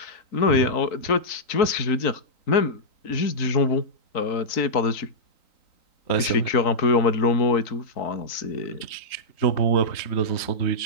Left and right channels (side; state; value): right; late; 3.9 ms